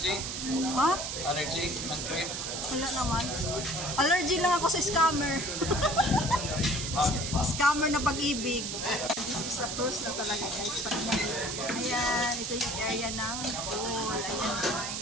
Ha? Allergy? Ang cream? Wala naman. Allergy lang ako sa scammer. Scammer na pag-ibig. This is a cruise na talaga guys. Ayan, ito yung area ng pool. Ayan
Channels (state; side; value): noise; right; hiss, 4 dB below the sound